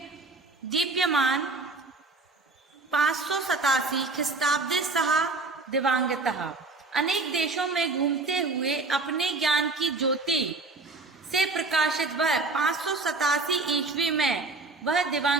दीप्यमान 587 ख्रीस्ताब्दे सह दिवांगतः, अनेक देशों में घूमते हुए अपने ज्ञान की ज्योति से प्रकाशित वह 587 ईस्वी में वह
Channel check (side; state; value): left; quieter; 3.5 dB